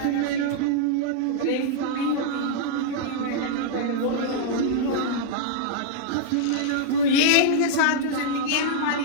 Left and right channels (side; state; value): both; different; correlation -0.01